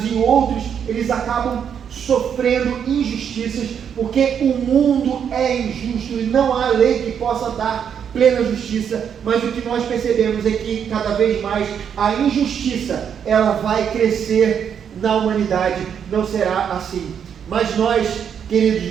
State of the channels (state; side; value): quieter; left; 8.0 dB